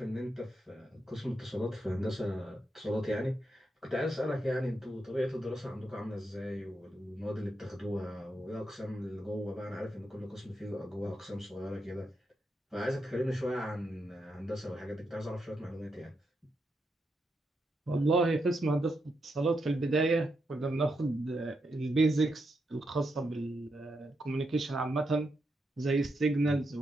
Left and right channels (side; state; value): both; normal; correlation 0.83